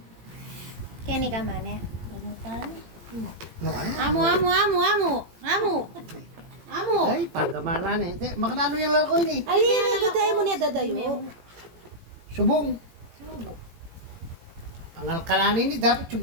Kenny ka man eh. Ano tayo? No, ano? Amo. Ay, pagkamana na eh. Makanano yung laro ko yun eh. Ay, may dadayo mo niya dadayo. Subong. Pangalkalanin ni, dapat yung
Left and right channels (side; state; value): left; late; 17 ms